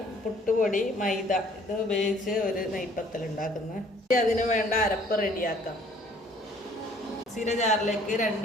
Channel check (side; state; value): both; normal; correlation 0.58